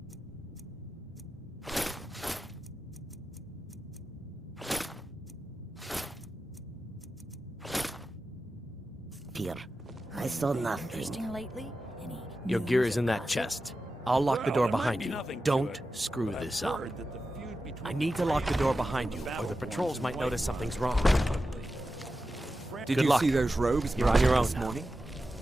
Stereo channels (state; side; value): normal; both; correlation 0.92